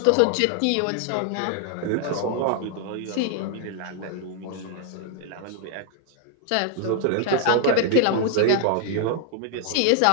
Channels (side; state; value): both; different; correlation 0.00